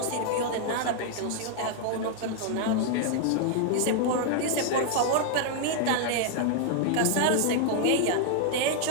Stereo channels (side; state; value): both; different; correlation 0.00